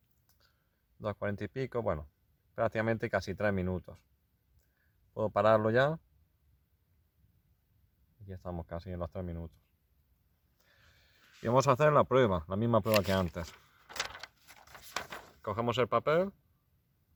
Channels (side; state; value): both; identical; correlation 1.00